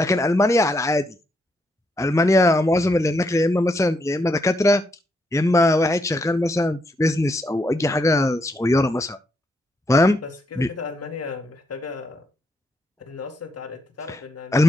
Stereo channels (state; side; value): normal; both; correlation 0.78